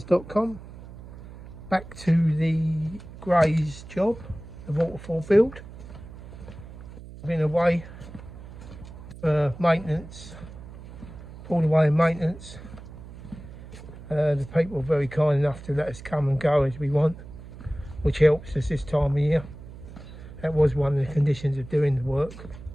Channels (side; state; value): right; noise; hum, 15 dB below the sound